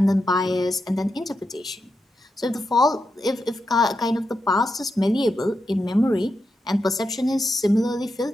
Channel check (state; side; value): normal; both; correlation 0.86